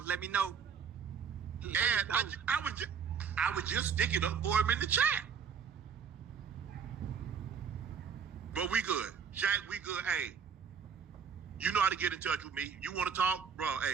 Let me know. And I was just sticking up for him in the chat. But we good. Shaq, we good. Hey, you know how to get in touch with me. You want to talk? Bro,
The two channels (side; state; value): left; quieter; 6.8 dB